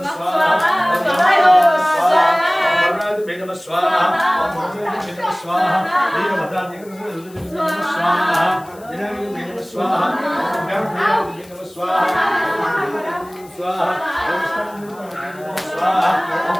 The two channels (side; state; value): left; noise; hiss, 25 dB below the sound